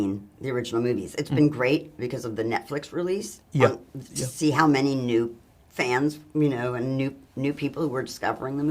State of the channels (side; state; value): both; identical; correlation 1.00